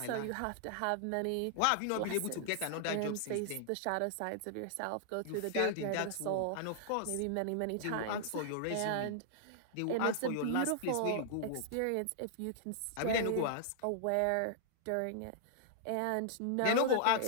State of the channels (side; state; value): both; different; correlation -0.01